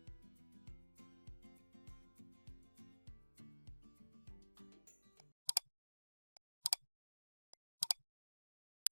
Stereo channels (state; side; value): inverted; both; correlation -1.00